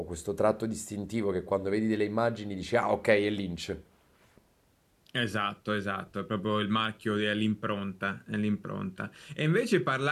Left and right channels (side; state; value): both; identical; correlation 1.00